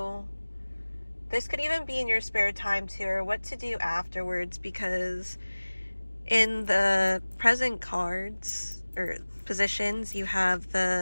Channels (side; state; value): both; inverted; correlation -1.00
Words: This could even be in your spare time too, or what to do afterwards, because in the present cards or positions, you have